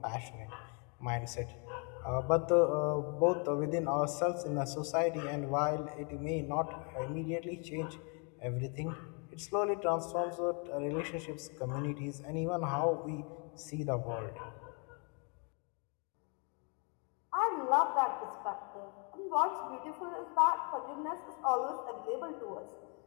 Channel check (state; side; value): quieter; right; 36.5 dB